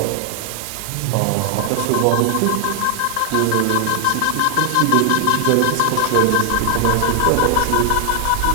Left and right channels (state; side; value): different; both; correlation 0.00